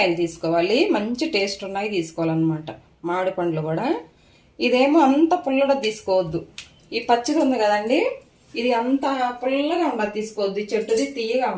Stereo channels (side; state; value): both; identical; correlation 1.00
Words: తీసుకోవాలి, మంచి టేస్ట్ ఉన్నాయి తీసుకోవాలన్నమాట. మామిడి పండ్లు కూడా. ఇదేమో అంత పుల్లగా తీసుకోవద్దు. ఈ పచ్చిది ఉంది కదండి, ఇది అంత పుల్లగా ఉండదు, తీసుకోవద్దు. చెట్టుది తీయగా